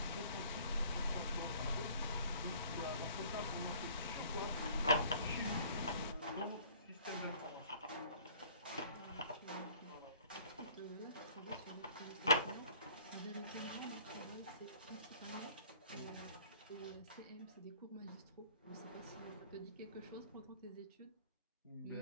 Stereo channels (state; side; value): inverted; both; correlation -0.53